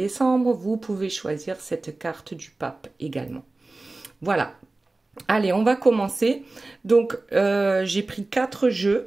vous pouvez choisir cette carte du pape également. Voilà. Allez, on va commencer. Donc, j'ai pris 4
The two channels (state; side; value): quieter; left; 3.2 dB